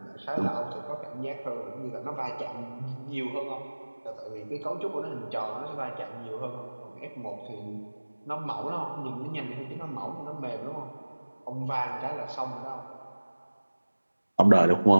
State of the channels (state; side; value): inverted; both; correlation -1.00